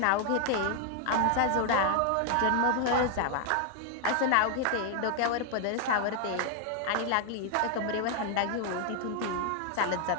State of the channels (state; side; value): different; both; correlation 0.00